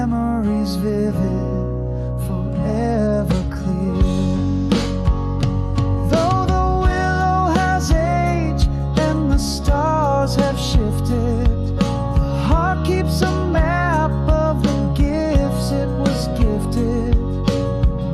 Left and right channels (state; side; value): identical; both; correlation 1.00